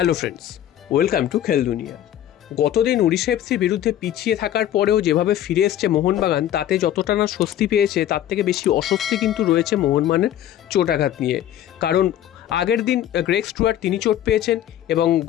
Hello friends, welcome to খেল দুনিয়া। গতদিন উড়িষ্যা এফসির বিরুদ্ধে পিছিয়ে থাকার পরেও যেভাবে ফিরে এসছে মোহনবাগান, তাতে যতটা না স্বস্তি পেয়েছে তার থেকে বেশি অস্বস্তি কিন্তু রয়েছে মোহনবাগানের চোটাঘাত নিয়ে। কারণ আগের দিন গ্রেগ স্টুয়ার্ট তিনি চোট পেয়েছেন এবং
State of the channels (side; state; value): right; quieter; 11.6 dB